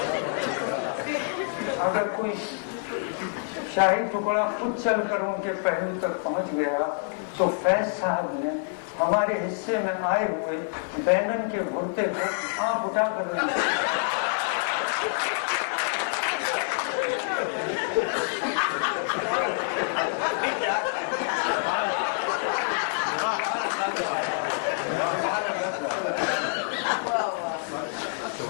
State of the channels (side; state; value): right; silent; digital silence